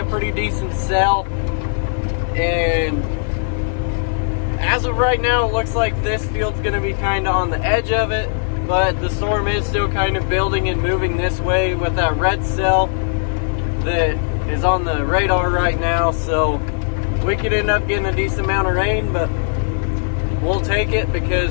pretty decent sell, and as of right now, it looks like this field's gonna be kind of on the edge of it, but the storm is still kind of building and moving this way with that red cell that is on the radar right now. So we could end up getting a decent amount of rain, but we'll take it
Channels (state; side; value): silent; right; 56 dB below the other